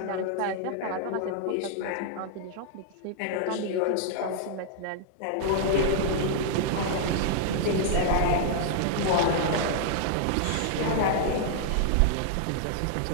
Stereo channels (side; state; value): both; different; correlation -0.01